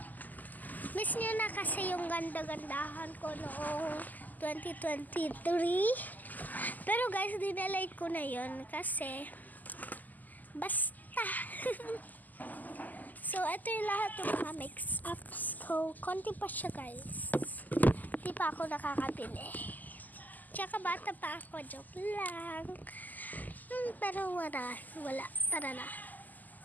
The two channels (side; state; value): right; late; 0.083 ms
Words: Miss nyo na kasi yung ganda-gandahan ko noong 2023. Pero guys, dinelete ko na yun kasi basta. So, ito yung lahat ng mga mix-ups ko. Konti pa siya guys. Di pa ako nakakabili. Tsaka bata pa ako. Joke lang. Pero wala. Tara na.